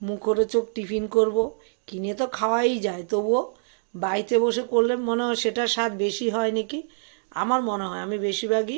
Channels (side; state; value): left; silent; digital silence